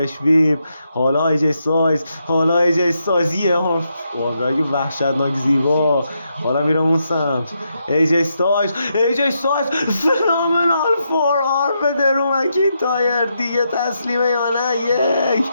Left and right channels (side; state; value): both; inverted; correlation -0.81